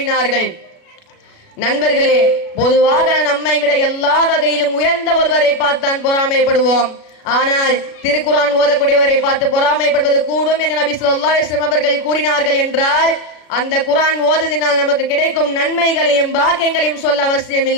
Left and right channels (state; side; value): late; right; 36 ms